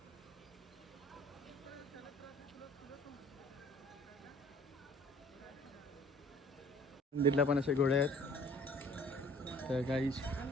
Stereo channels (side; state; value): both; normal; correlation 0.52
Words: मंदिरला पण असे घोडे आहेत. तर काही